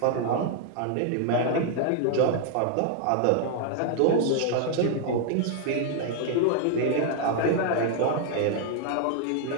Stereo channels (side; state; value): both; different; correlation 0.00